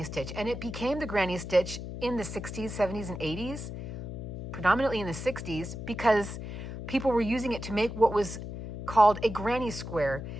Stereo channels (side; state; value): left; noise; hum, 8 dB below the sound